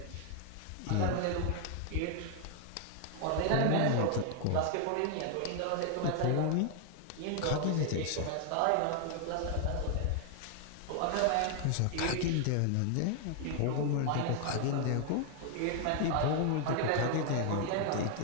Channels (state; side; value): different; both; correlation 0.00